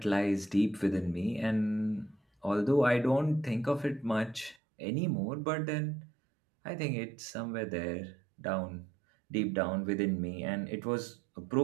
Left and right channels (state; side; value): drops out; left; at 4.5 s